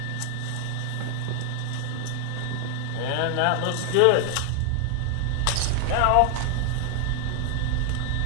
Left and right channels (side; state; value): both; different; correlation 0.00